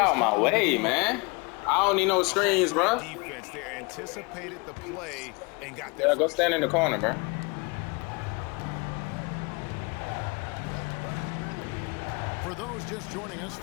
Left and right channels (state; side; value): quieter; right; 29.1 dB